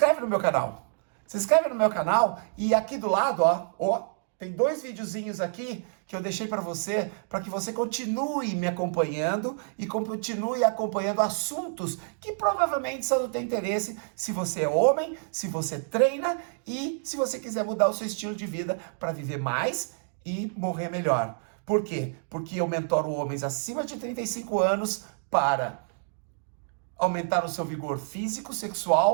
no meu canal. Se inscreve no meu canal e aqui do lado, ó, tem 2 videozinhos aqui que eu deixei para que você continue me acompanhando e continue acompanhando assuntos que provavelmente são do teu interesse, se você é homem, se você treina e se você quiser mudar o seu estilo de vida para viver mais e morrer melhor. Por quê? Porque eu mentoro homens acima de 35 anos para aumentar o seu vigor físico,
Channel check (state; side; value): silent; left; digital silence